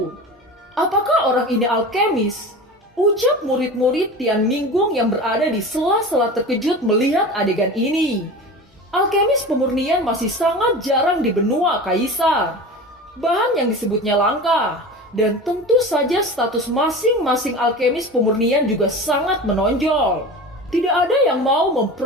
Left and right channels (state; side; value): normal; both; correlation 0.32